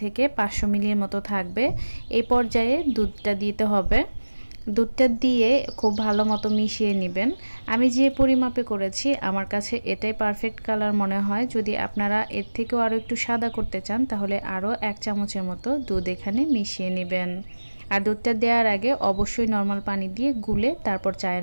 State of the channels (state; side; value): inverted; both; correlation -1.00